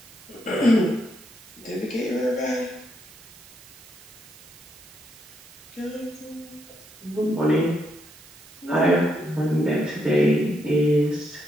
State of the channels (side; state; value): right; noise; hiss, 21 dB below the sound